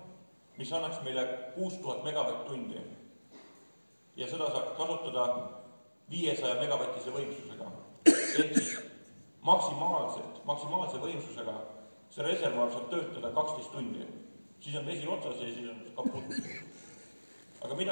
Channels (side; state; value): both; inverted; correlation -1.00